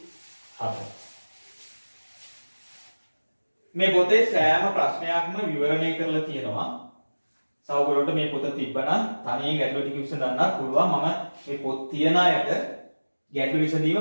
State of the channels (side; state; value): both; inverted; correlation -1.00